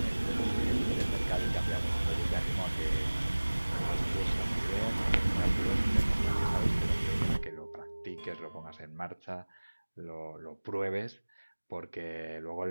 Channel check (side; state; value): both; inverted; correlation -1.00